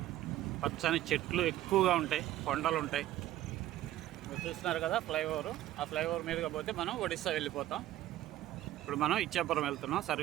పచ్చని చెట్లు ఎక్కువగా ఉంటాయి, కొండలు ఉంటాయి. మీరు చూస్తున్నారు కదా ఫ్లైఓవర్. ఆ ఫ్లైఓవర్ మీదుగా పోతే మనం ఒడిస్సా వెళ్ళిపోతాం. ఇప్పుడు మనం ఇచ్చాపురం వెళ్తున్నాం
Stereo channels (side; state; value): left; quieter; 14.2 dB